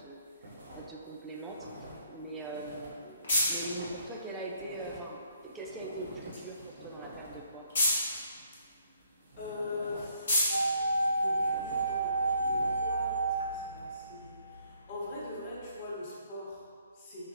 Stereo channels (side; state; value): both; inverted; correlation -0.67